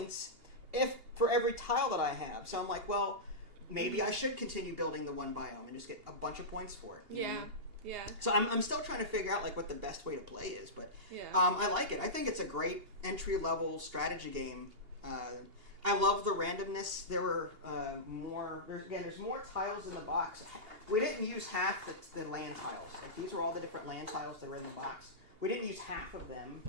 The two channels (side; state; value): left; late; 2.8 ms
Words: for every tile that I have, so I'm like, well, maybe I should continue building the one biome and just get a bunch of points for it. Yeah. So I'm still trying to figure out like what the best way to play is, but I like it. I think it's a great entry-level strategy game. I love the randomness. There were there's more tiles in the box. We didn't use half the land tiles. Like these were all the different land tiles that were in the box. We didn't use half of them,